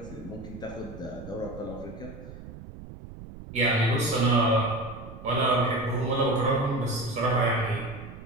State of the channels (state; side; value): noise; right; rumble, 14 dB below the sound